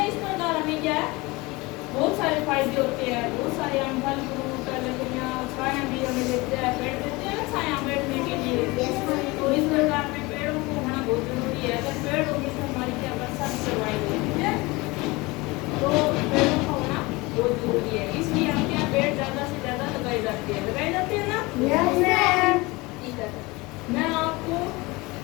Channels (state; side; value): quieter; right; 23.4 dB